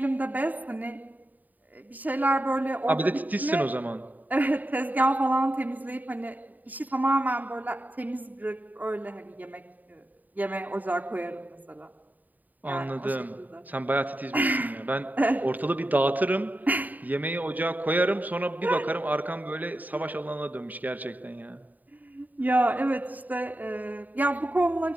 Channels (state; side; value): late; left; 0.083 ms